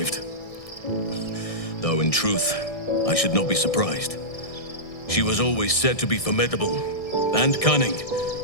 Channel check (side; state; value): right; late; 1.6 ms